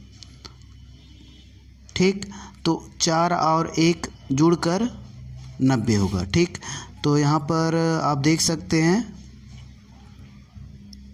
ठीक, तो 4 और 1 जुड़कर 90 होगा। ठीक, तो यहाँ पर आप देख सकते हैं,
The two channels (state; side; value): identical; both; correlation 1.00